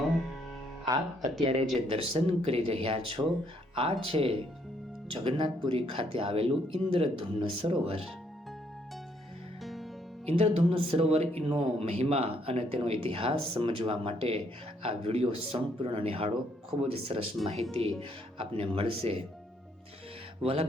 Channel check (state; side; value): normal; both; correlation 0.70